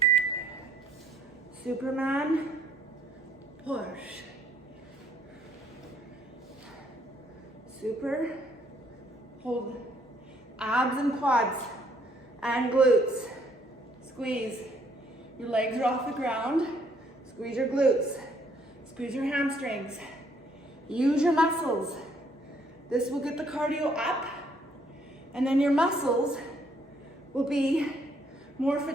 Superman, push. Super, hold. Abs and quads and glutes. Squeeze. Your legs are off the ground. Squeeze your glutes. Squeeze your hamstrings. Use your muscles. This will get the cardio up, and then your muscles will be more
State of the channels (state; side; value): normal; both; correlation 0.65